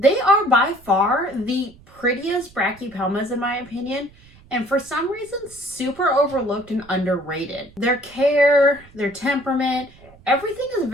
are by far the prettiest Brachypelmas in my opinion, and for some reason super overlooked and underrated. Their care, their temperament, everything is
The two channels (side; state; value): right; noise; rumble, 25 dB below the sound